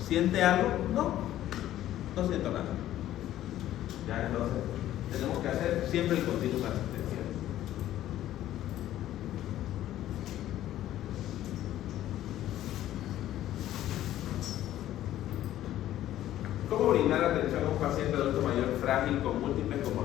algo? No siento nada. Ya, entonces, tenemos que hacer siempre el continuum asistencial. ¿Cómo brindar atención a un paciente adulto mayor frágil con múltiples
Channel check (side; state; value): right; quieter; 13.1 dB